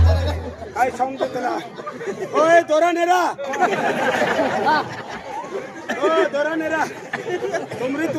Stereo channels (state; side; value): identical; both; correlation 1.00